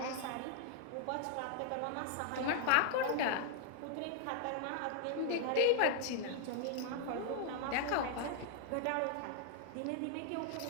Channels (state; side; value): different; both; correlation 0.00